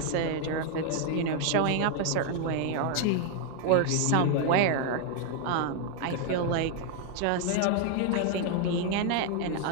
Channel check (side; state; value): both; different; correlation 0.00